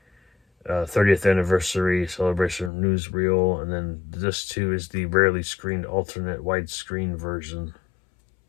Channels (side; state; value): right; drops out; at 2.7 s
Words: 30th anniversary celebration newsreel, and then disc 2 is the rarely screened alternate widescreen version.